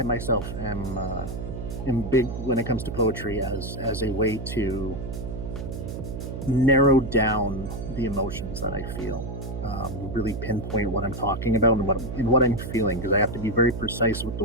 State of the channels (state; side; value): noise; right; hum, 7 dB below the sound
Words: myself am big when it comes to poetry as a way to narrow down the emotions that I feel, really pinpoint what I'm talking about and what I'm feeling, because I have to be very precise with the